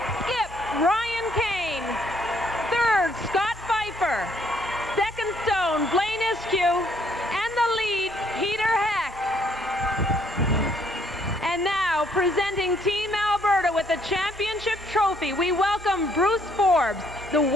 skip Ryan Keane. Third, Scott Pfeiffer. Second stone, Blaine Iskew. And the lead, Peter Heck. And now, presenting Team Alberta with the championship trophy, we welcome Bruce Forbes, the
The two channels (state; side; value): normal; both; correlation 0.67